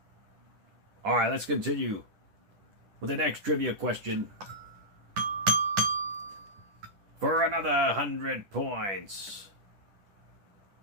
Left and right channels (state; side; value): late; left; 10 ms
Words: All right, let's continue with the next trivia question. for another 100 points.